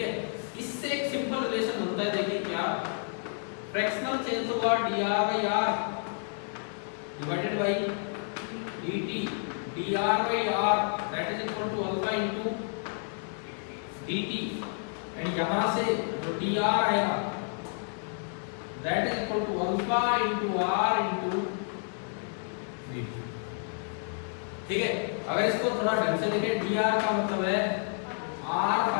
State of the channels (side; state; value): right; silent; 58 dB below the other